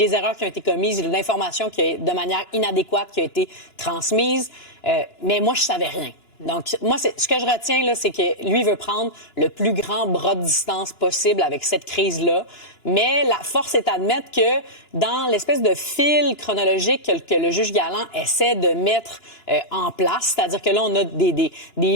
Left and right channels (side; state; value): right; late; 2.9 ms